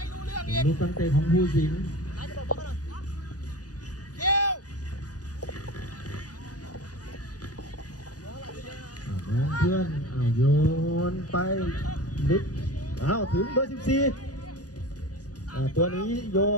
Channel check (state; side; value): late; right; 0.68 ms